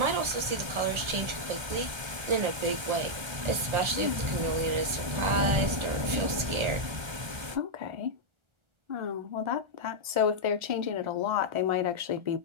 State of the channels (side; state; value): left; late; 1.4 ms